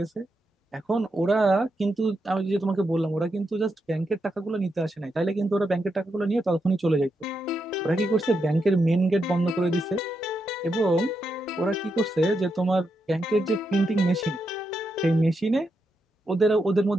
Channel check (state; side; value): normal; both; correlation 0.84